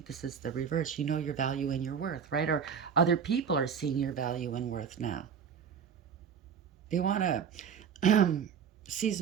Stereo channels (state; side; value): quieter; left; 7.2 dB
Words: this is the reverse. You know your value and your worth, right? Or other people are seeing your value and worth now. They want to seize